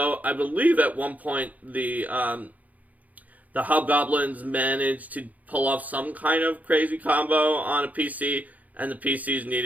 I believe at one point the hobgoblins managed to pull off some kind of crazy combo on a PC, and the PCs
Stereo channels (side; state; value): left; late; 0.076 ms